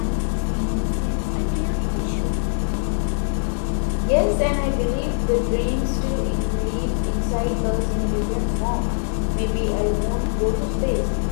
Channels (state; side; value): silent; right; digital silence